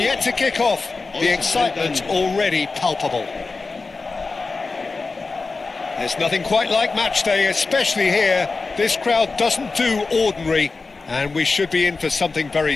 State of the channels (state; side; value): quieter; right; 4.0 dB